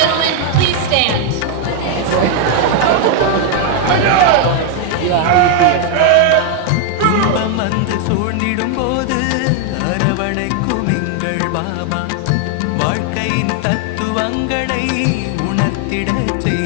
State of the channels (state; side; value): different; both; correlation 0.00